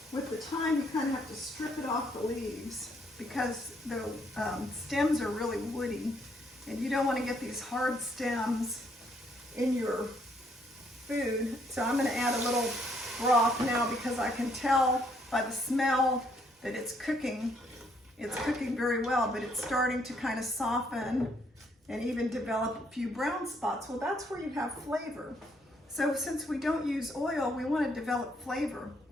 With the thyme, you kind of have to strip it off the leaves because the stems are really woody, and you don't want to get these hard stems in your food. So I'm going to add a little broth now because I can tell by the smell that it's cooking. It's cooking very well, but it's starting to kind of soften and even develop a few brown spots. Well, that's where you have flavor. So since we don't use oil, we want to develop flavor.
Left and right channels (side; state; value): both; normal; correlation 0.70